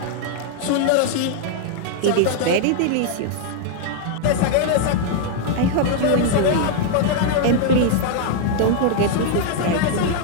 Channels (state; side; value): different; both; correlation 0.00